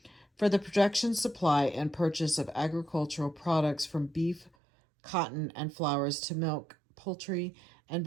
for the production, supply, and purchase of agricultural products from beef, cotton, and flowers to milk, poultry, and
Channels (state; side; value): drops out; left; at 4.5 s